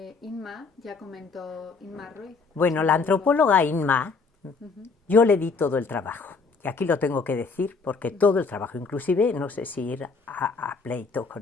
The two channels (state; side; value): quieter; right; 4.5 dB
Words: Inma ya comentó, Inma Ruiz. Bueno, la antropóloga Inma, yo le di todo el trabajo. Y aquí lo tengo que decir porque todo el trabajo, inclusive no sé si ir a pleito